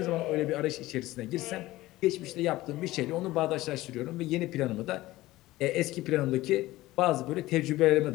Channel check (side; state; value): right; quieter; 17.6 dB